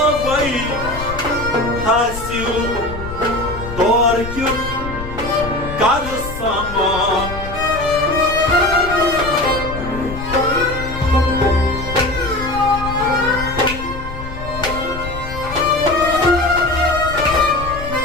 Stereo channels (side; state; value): left; noise; rumble, 9 dB below the sound